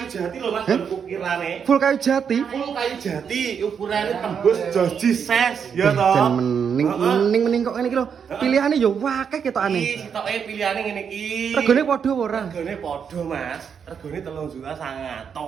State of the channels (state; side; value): quieter; left; 7.1 dB